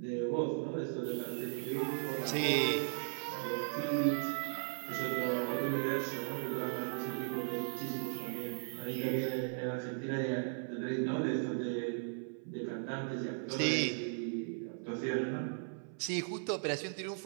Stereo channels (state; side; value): silent; left; 53 dB below the other